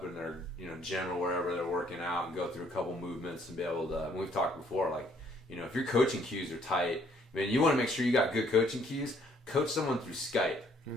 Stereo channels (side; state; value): both; normal; correlation 0.65